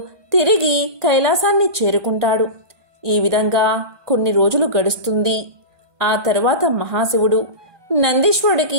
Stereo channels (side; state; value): left; late; 1.2 ms